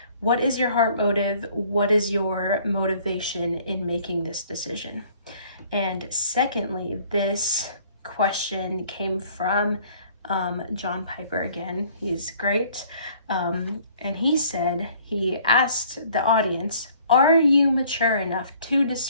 what is your heart motive? What is your motivation in making this decision? And secondly, this question came from John Piper again. He's great. And he asked the audience, are you mature enough to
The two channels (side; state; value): both; inverted; correlation -0.57